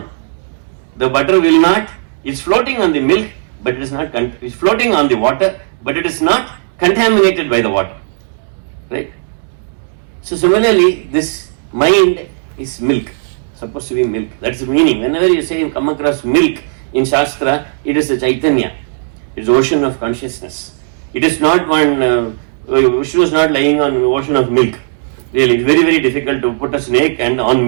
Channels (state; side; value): silent; left; digital silence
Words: The butter will not, it's floating on the milk, but it is not, it's floating on the water, but it is not contaminated by the water. Right? So similarly, this mind is milk, supposed to be milk. That's the meaning. Whenever you say you come across milk in Shastra, it is a Chaitanya. It is ocean of consciousness. It is not one, Vishnu is not lying on ocean of milk. Really, it's very, very difficult to put a snake and on